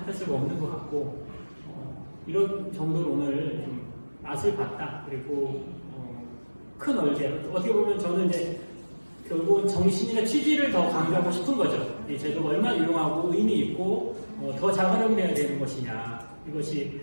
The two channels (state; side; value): inverted; both; correlation -1.00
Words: 할 수가 없는 것 같고 이런 정도로 오늘 좀 맛을 봤다. 그리고 큰 얼개 어떻게 보면 저는 이제 결국은 정신이나 취지를 더 강조하고 싶은 거죠. 이 제도가 얼마나 유용하고 의미 있고 더 잘 활용돼야 되는 것이냐 이것이